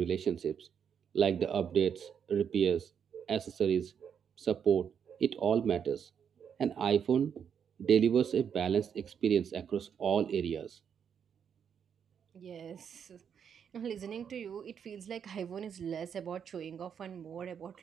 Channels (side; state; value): left; quieter; 7.7 dB